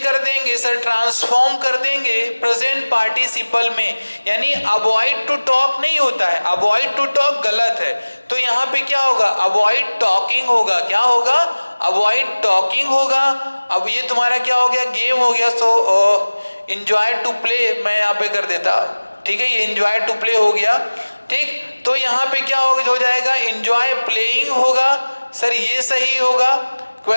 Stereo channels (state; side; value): inverted; both; correlation -1.00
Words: देंगे सर, ट्रांसफॉर्म कर देंगे प्रेजेंट पार्टिसिपल में, यानी अवॉइड टू टॉक नहीं होता है, अवॉइड टू टॉक गलत है, तो यहाँ पे क्या होगा, अवॉइड टॉकिंग होगा, क्या होगा, अवॉइड टॉकिंग होगा। अब ये तुम्हारा क्या हो गया, गेम हो गया। सो इंजॉय टू प्ले मैं यहाँ पे कर देता, ठीक है, ये इंजॉय टू प्ले हो गया, ठीक। तो यहाँ पे क्या हो जाएगा, इंजॉय प्लेइंग होगा सर, ये सही होगा।